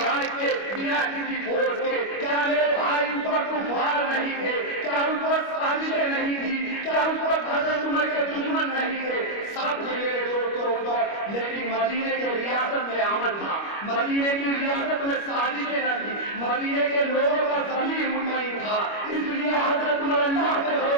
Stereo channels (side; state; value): right; late; 25 ms